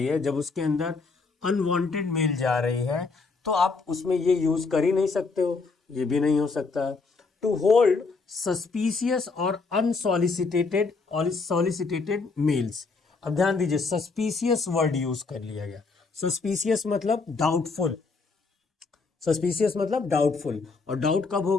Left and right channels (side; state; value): right; quieter; 4.3 dB